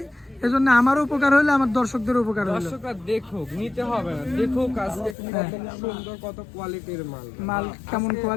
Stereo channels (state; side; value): drops out; right; at 5.2 s